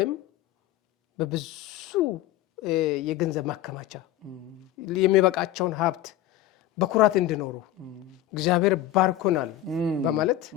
በብዙ የገንዘብ ማከማቻ የሚበቃቸውን ሀብት በኩራት እንዲኖሩ እግዚአብሔር ባርኮናል በማለት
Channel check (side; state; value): right; quieter; 12.9 dB